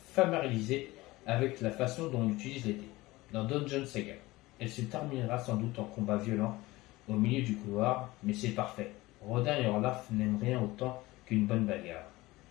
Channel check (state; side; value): quieter; right; 19.8 dB